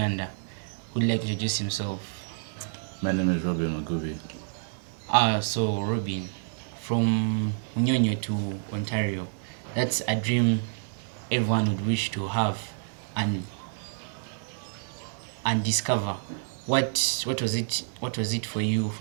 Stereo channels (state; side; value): silent; left; digital silence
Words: Who'd like to introduce himself? My name is Robin Magubi. So Robin, from Munyonyo to Ontario, that's a dream everyone would wish to have and discover. What was it for you